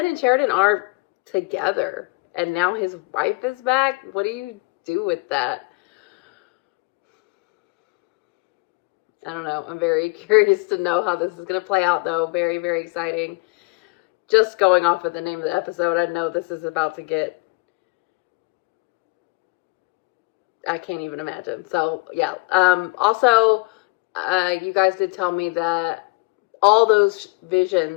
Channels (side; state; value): right; quieter; 27.4 dB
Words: and Sheridan are together, and now his wife is back. What do you do with that? I don't know. I'm very curious to know how this is going to play out, though. Very, very exciting. Just going off of the name of the episode, I know this is about to get... I can't even imagine. So, yeah. Also, you guys did tell me that all those